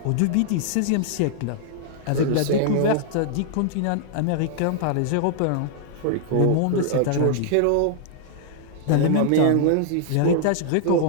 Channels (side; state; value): both; different; correlation -0.01